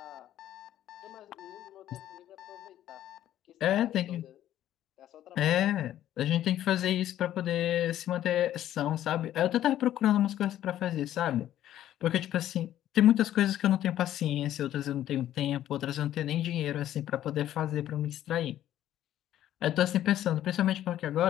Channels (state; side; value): quieter; right; 12.3 dB